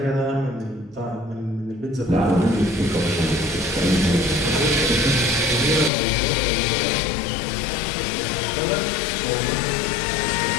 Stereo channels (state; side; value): drops out; right; at 5.9 s